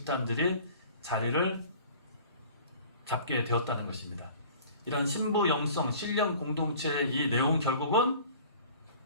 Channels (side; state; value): both; inverted; correlation -0.46